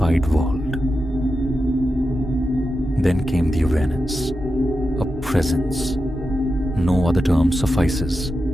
world. Then came the awareness, a presence. No other term suffices.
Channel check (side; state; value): both; normal; correlation 0.90